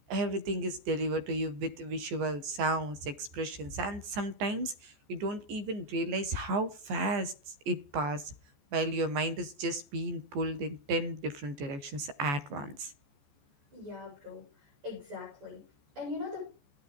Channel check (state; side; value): late; left; 14 ms